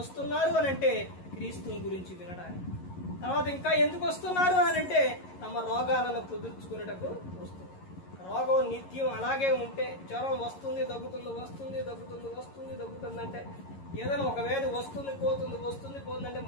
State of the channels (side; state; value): right; late; 11 ms